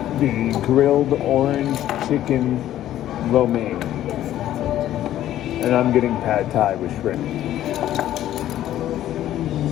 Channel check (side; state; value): right; quieter; 12.7 dB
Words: The grilled orange chicken lo mein. And I'm getting pad thai with shrimp.